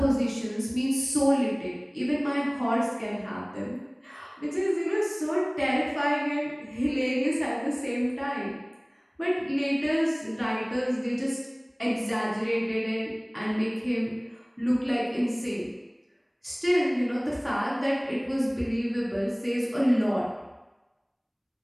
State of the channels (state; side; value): identical; both; correlation 1.00